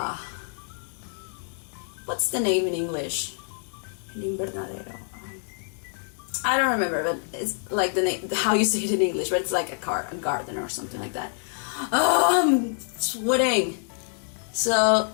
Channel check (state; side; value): silent; right; 61 dB below the other